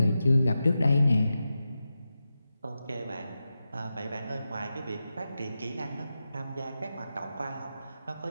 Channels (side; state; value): both; inverted; correlation -0.91